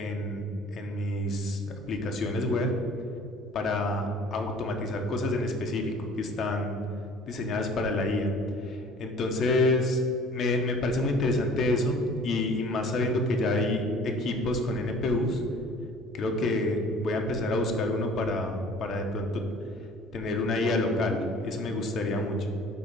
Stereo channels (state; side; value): normal; both; correlation 0.49